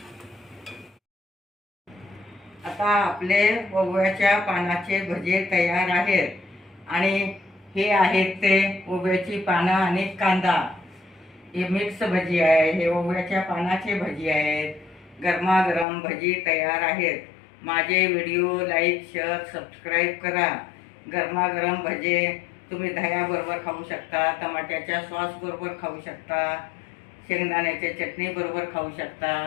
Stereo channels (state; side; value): drops out; right; at 15.9 s